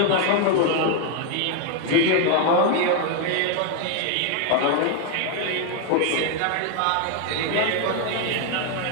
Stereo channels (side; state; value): both; different; correlation 0.01